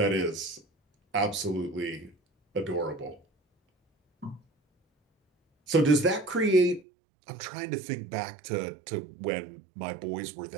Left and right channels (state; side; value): drops out; left; at 6.9 s